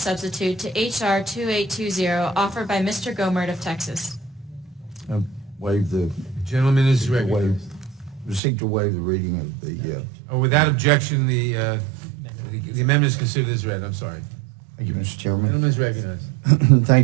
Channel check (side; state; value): left; drops out; at 8.4 s